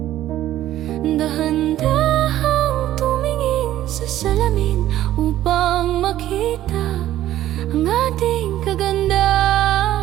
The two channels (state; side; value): quieter; left; 13.3 dB